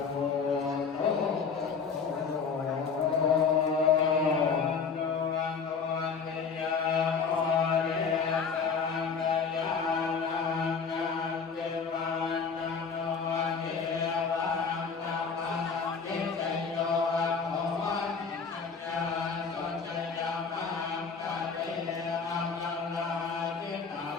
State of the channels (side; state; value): right; quieter; 5.6 dB